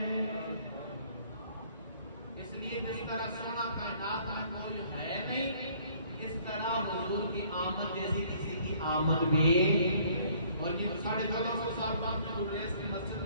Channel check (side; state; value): both; inverted; correlation -0.59